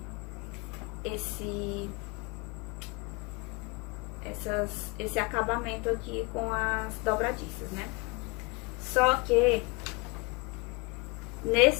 esse acabamento aqui com as dobradiças, né? Só que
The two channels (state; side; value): quieter; right; 27.7 dB